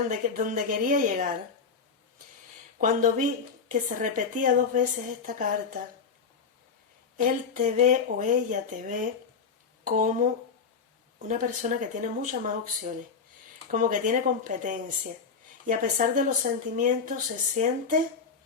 donde quería llegar, cuando vi que se repetía 2 veces esta carta, él te ve o ella te ve como una persona que tiene muchas más opciones, como que tiene competencia, y a pesar de los sentimientos se siente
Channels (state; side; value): quieter; right; 5.6 dB